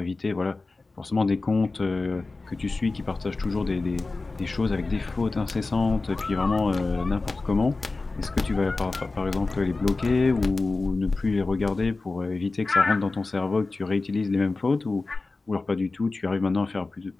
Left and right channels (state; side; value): quieter; right; 3.6 dB